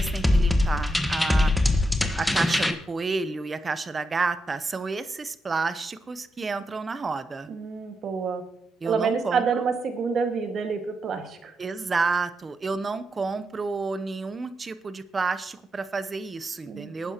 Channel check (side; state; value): both; normal; correlation 0.86